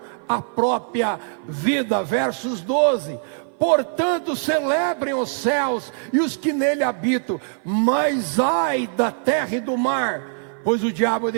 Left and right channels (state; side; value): silent; left; 57 dB below the other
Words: a própria vida. Versos 12: portanto celebrem os céus e os que nele habitam, mas ai da terra e do mar, pois o diabo